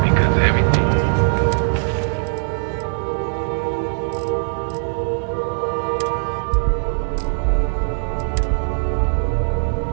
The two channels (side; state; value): left; silent; digital silence